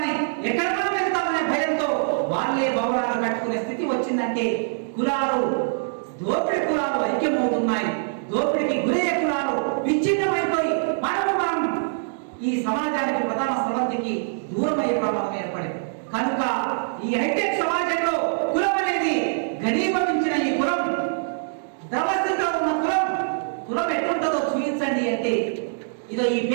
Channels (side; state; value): left; silent; digital silence